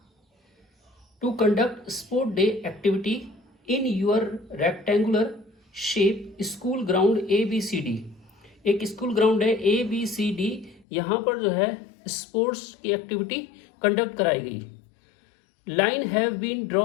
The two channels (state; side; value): drops out; right; at 10.9 s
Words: to conduct sport day activity in your rectangular shape school ground ABCD। एक स्कूल ग्राउंड है ABCD, यहाँ पर जो है स्पोर्ट्स की एक्टिविटी कंडक्ट कराई गई। Line have been